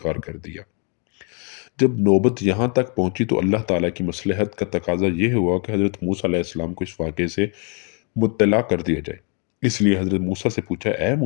کر دیا۔ جب نوبت یہاں تک پہنچی تو اللہ تعالیٰ کی مصلحت کا تقاضا یہ ہوا کہ حضرت موسیٰ علیہ السلام کو اس واقعے سے مطلع کر دیا جائے۔ اس لیے حضرت موسیٰ سے پوچھا، اے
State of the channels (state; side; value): quieter; right; 37.5 dB